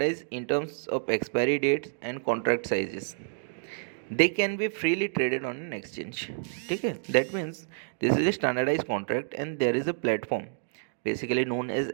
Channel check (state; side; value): silent; left; digital silence